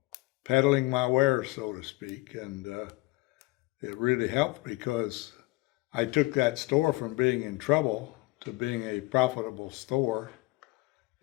peddling my wares, so to speak, and it really helped because I took that store from being in trouble to being a profitable store.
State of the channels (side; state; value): right; quieter; 22.5 dB